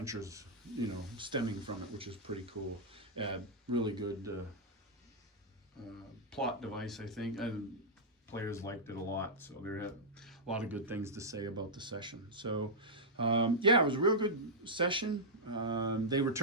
stemming from it, which is pretty cool. Really good plot device, I think, and players liked it a lot, so there had a lot of good things to say about the session. So yeah, it was a real good session. They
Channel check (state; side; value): normal; both; correlation -0.07